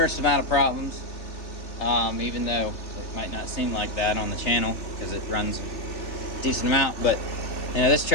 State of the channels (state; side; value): late; right; 3.4 ms